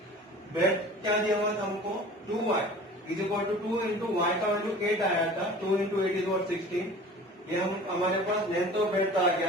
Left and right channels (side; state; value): both; normal; correlation 0.42